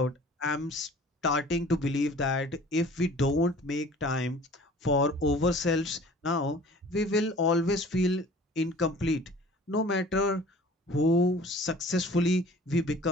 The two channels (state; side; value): normal; both; correlation 0.47